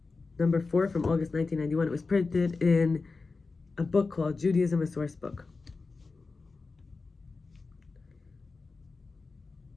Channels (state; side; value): quieter; right; 4.1 dB